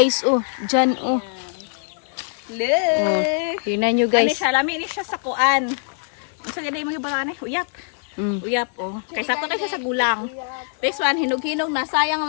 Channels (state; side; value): silent; right; 64 dB below the other